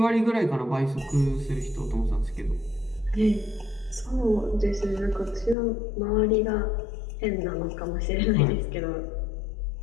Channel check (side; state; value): right; drops out; at 5.6 s